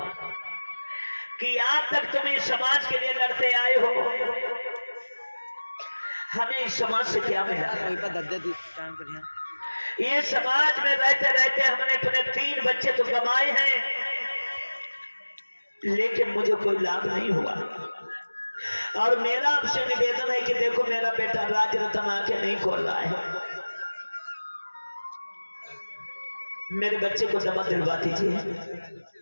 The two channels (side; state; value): both; inverted; correlation -1.00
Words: कि आज तक तुम इस समाज के लिए लड़ते आए हो, हमें इस समाज से क्या मिला? ये समाज में रहते रहते हमने अपने 3 बच्चे तो कमाए हैं लेकिन मुझे कोई लाभ नहीं हुआ। और मेरा आपसे निवेदन है कि देखो मेरा बेटा राज रतन आंखें नहीं खोल रहा है, मेरे बच्चे को दवा दिलवा दीजिए,